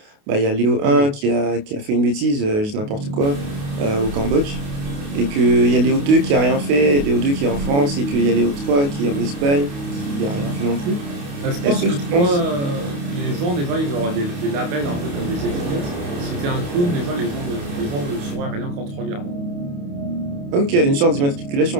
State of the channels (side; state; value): left; late; 28 ms